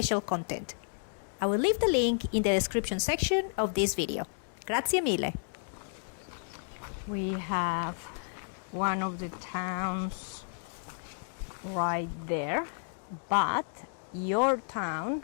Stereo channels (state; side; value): silent; right; digital silence